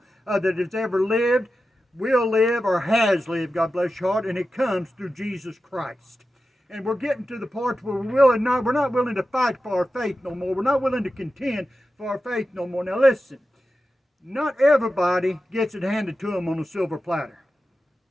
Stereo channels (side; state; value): both; normal; correlation 0.92